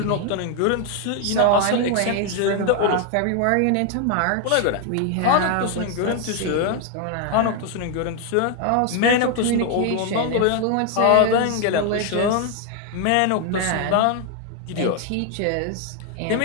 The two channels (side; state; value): both; different; correlation 0.01